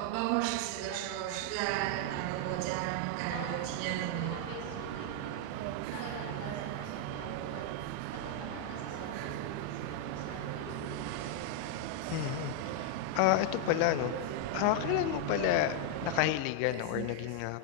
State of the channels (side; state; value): both; different; correlation 0.00